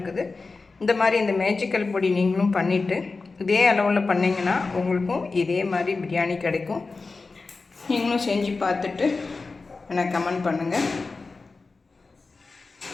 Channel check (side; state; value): right; quieter; 4.0 dB